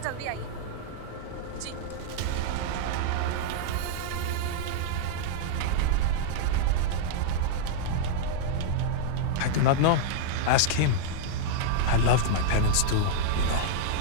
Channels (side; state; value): both; different; correlation -0.01